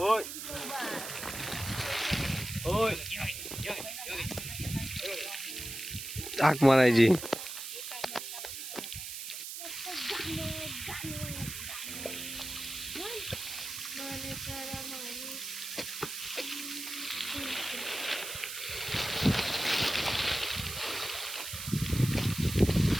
होय हाक मारायची.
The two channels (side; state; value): right; noise; hiss, 7 dB below the sound